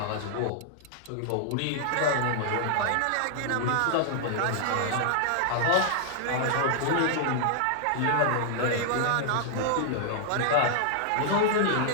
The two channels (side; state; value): both; different; correlation -0.01